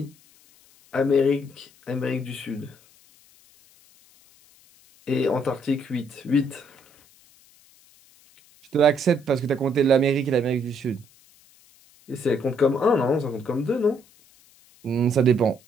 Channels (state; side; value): noise; left; hiss, 29 dB below the sound